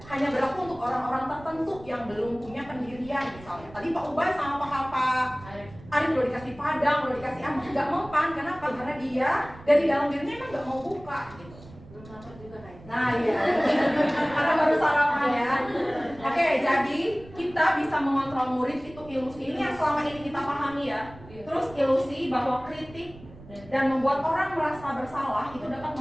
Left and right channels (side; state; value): right; noise; rumble, 19 dB below the sound